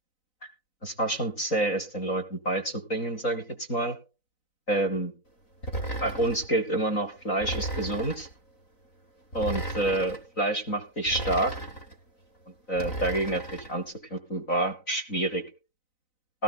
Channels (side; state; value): right; late; 4.0 ms